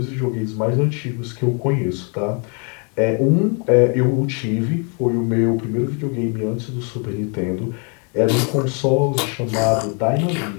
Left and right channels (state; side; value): quieter; right; 37.7 dB